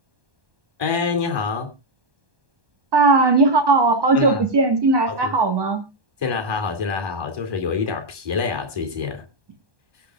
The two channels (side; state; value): left; late; 1.2 ms